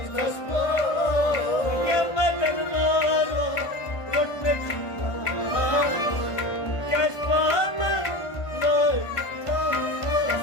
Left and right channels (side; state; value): right; late; 1.5 ms